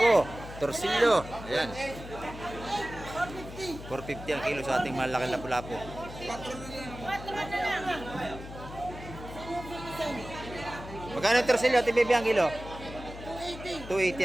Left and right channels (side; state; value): left; noise; hum, 12 dB below the sound